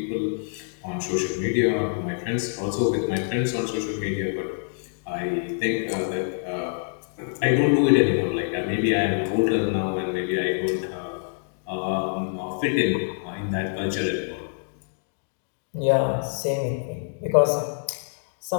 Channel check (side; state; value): right; silent; digital silence